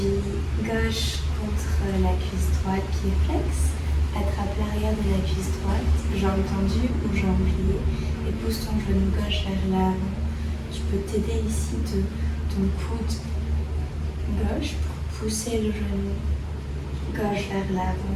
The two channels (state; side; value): identical; both; correlation 1.00